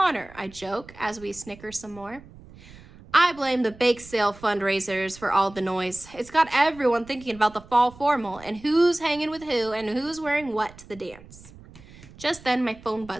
I joke as we snicker some more. I blame the bake sale fundraisers for all the noise. It's got everyone thinking about the fall formal and who's hanging with who and who's wearing what to the dance. Just then my phone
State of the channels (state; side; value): noise; right; rumble, 21 dB below the sound